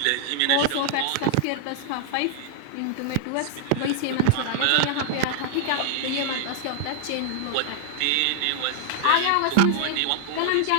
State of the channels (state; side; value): different; both; correlation -0.01